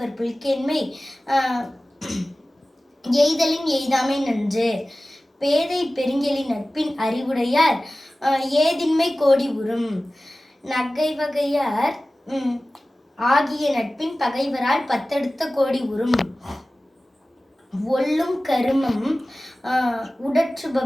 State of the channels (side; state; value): both; normal; correlation 0.97